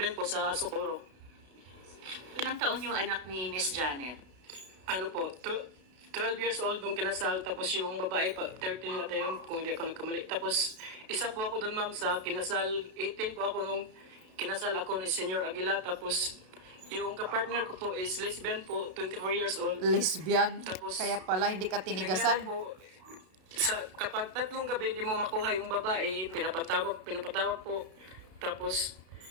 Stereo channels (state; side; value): late; left; 32 ms